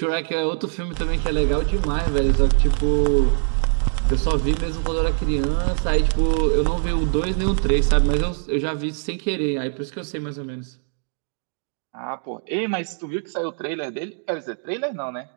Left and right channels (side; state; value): left; silent; digital silence